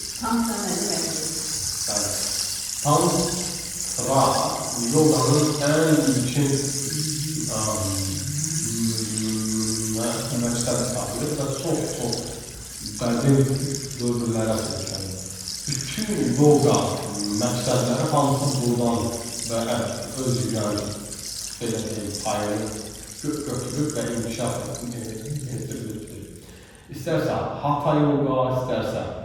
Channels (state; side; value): identical; both; correlation 1.00